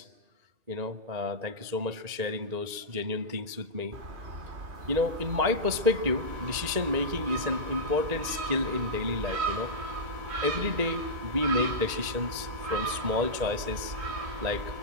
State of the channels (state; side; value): late; left; 1.9 ms